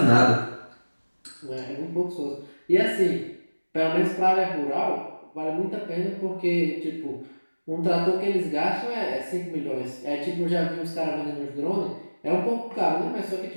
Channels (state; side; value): inverted; both; correlation -1.00